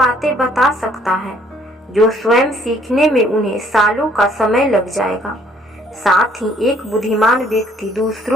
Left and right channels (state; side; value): normal; both; correlation 0.62